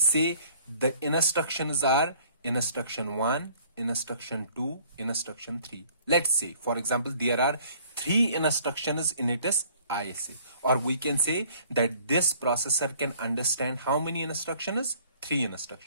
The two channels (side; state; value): both; inverted; correlation -0.56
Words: say the instructions are instruction 1, instruction 2, instruction 3. Let's say, for example, there are 3 instructions in its ISA, or we can say that this processor can understand how many instructions? 3